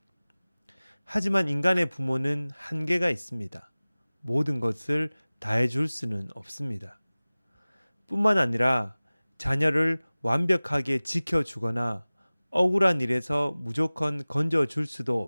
하지만 인간의 부모는 한계가 있습니다. 모든 것을 다 해줄 수는 없습니다. 뿐만 아니라 자녀를 완벽하게 지켜주거나 억울한 일에서 무조건 건져줄 수도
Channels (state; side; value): inverted; both; correlation -0.99